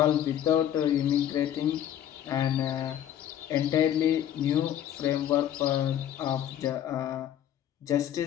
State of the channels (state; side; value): quieter; right; 10.8 dB